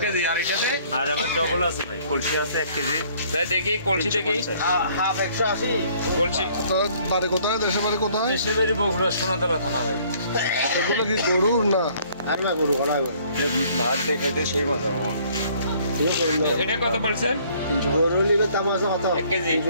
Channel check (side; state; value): both; inverted; correlation -0.60